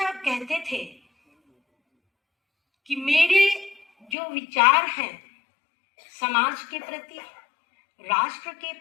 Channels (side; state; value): right; drops out; at 4.2 s